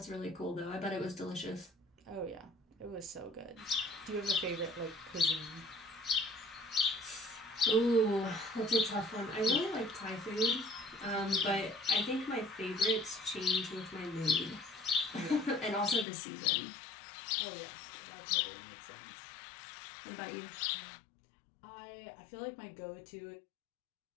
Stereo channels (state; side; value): drops out; right; at 16.1 s